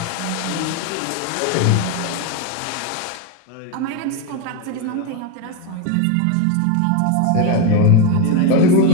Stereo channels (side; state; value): both; different; correlation 0.02